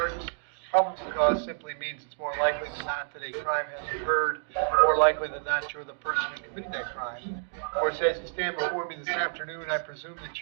Probable cause simply means it's more likely than not that a crime has occurred, more likely than not you're the person who committed that crime. Of course, as you stand before me this afternoon, I presume that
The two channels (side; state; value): left; silent; digital silence